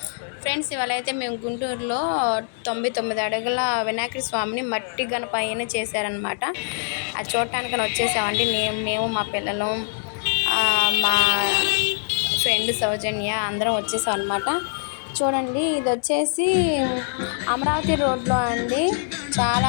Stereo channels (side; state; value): right; silent; digital silence